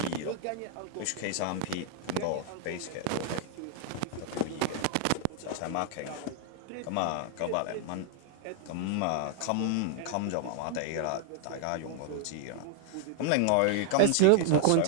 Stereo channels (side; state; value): both; different; correlation 0.00